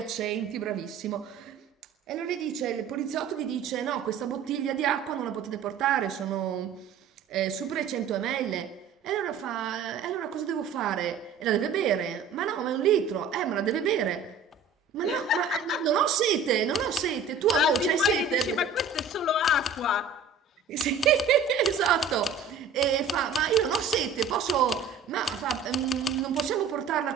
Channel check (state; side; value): quieter; left; 5.2 dB